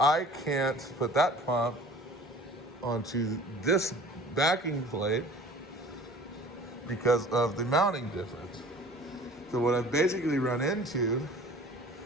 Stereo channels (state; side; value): normal; both; correlation 0.46